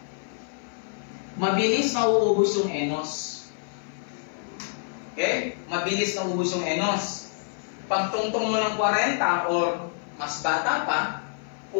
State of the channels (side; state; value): right; silent; 55 dB below the other